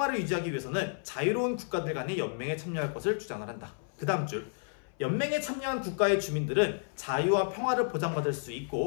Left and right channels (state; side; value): silent; right; 57 dB below the other